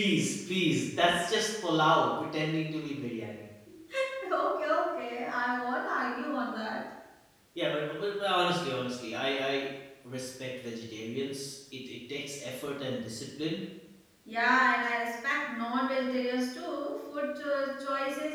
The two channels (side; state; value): both; identical; correlation 1.00